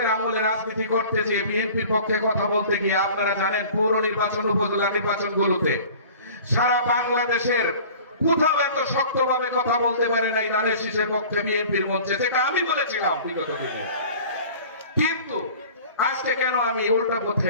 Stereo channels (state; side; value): inverted; both; correlation -0.44